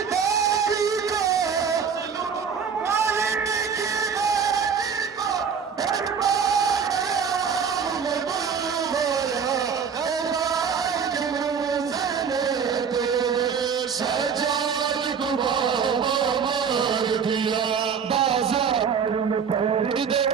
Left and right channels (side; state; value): left; quieter; 6.6 dB